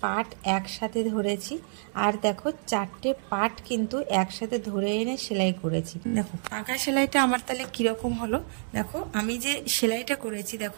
পার্ট একসাথে ধরেছি, আর দেখো চারটে পার্ট কিন্তু একসাথে ধরে এনে সেলাই করেছি। দেখো পাকা সেলাইটা আমার তাহলে কিরকম হলো। দেখো আমি যে সেলাইটা করেছি,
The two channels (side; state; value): left; silent; digital silence